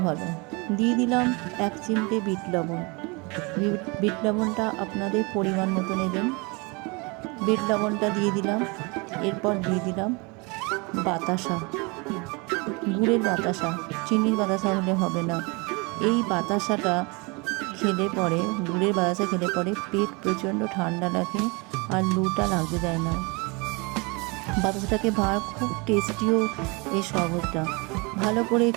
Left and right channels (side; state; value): left; quieter; 28.4 dB